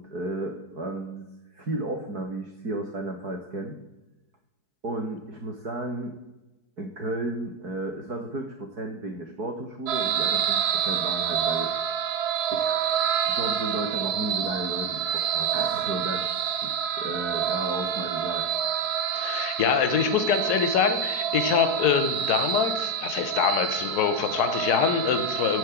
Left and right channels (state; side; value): late; left; 4.7 ms